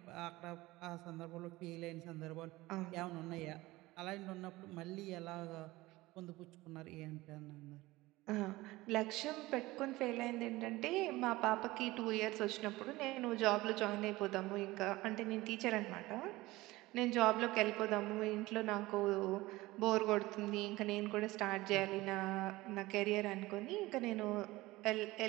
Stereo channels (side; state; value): left; quieter; 19.4 dB